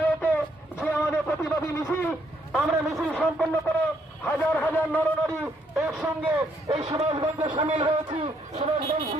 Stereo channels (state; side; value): normal; both; correlation 0.71